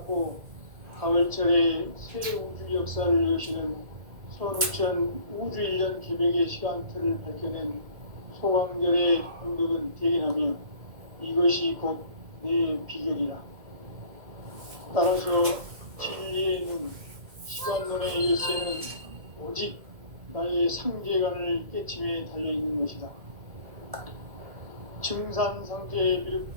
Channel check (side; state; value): left; late; 2.2 ms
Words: 가을철에 새 우주 역사를 여시는 선우천 우주일년 기백의 시간틀을 밝혀낸 소강절의 공덕은 대견하며 이것이 곧 내 비결이라. 따라서 진리의 눈, 시간론의 열쇠는 오직 나의 상제관을 깨침에 달려있는 것이다. 증산상제